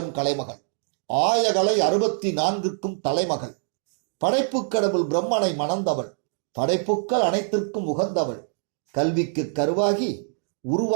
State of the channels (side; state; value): left; silent; digital silence